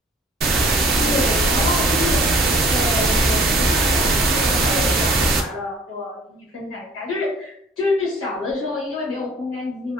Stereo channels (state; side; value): normal; both; correlation 0.53